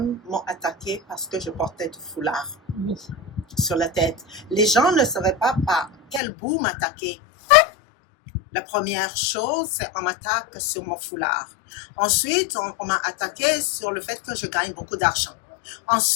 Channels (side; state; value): right; drops out; at 6.2 s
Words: m'ont attaqué parce que je portais du foulard sur la tête? Les gens ne savaient pas par quel bout m'attaquer. La première chose, c'est on m'attaque sur mon foulard. Ensuite, on m'a attaqué sur le fait que je gagne beaucoup d'argent.